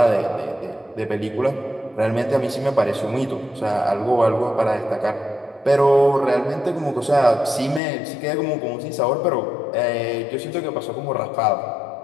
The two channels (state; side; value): drops out; right; at 7.8 s